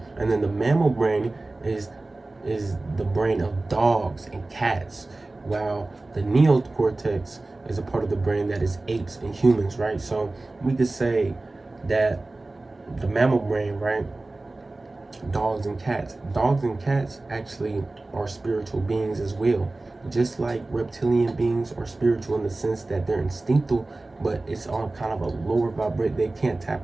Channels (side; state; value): left; quieter; 3.0 dB